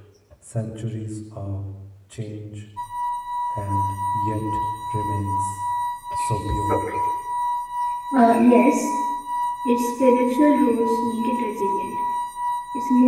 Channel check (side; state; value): both; identical; correlation 1.00